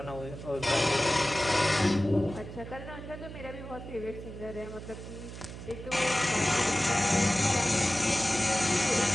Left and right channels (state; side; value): noise; right; hum, 11 dB below the sound